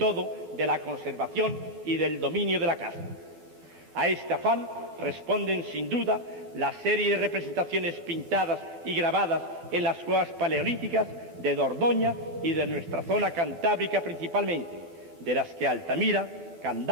de la conservación y del dominio de la casta. A este afán responden sin duda la serie de representaciones pintadas y grabadas en las cuevas paleolíticas de Dordoña y de nuestra zona cantábrica principalmente, de las que Altamira,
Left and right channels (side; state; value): left; late; 12 ms